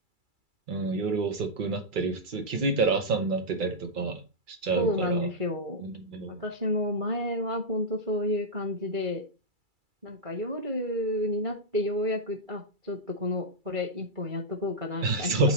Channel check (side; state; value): left; late; 2.3 ms